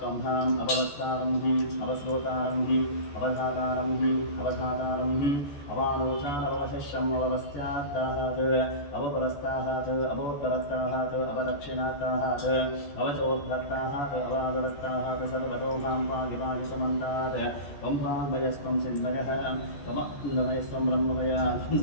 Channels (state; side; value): late; right; 14 ms